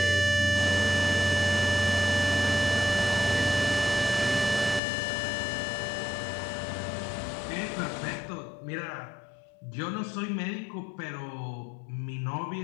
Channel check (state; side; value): drops out; right; at 4.8 s